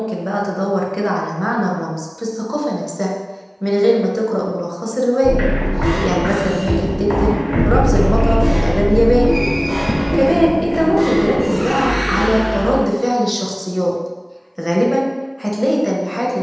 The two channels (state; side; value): identical; both; correlation 1.00